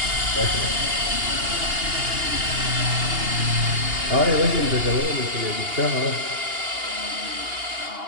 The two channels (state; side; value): late; left; 2.8 ms